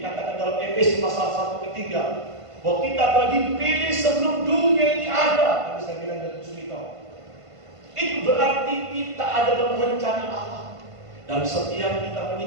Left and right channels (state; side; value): late; left; 1.5 ms